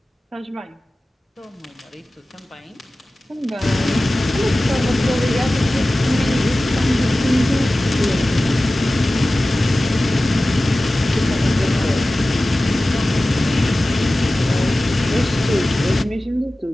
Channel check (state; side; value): normal; both; correlation 0.96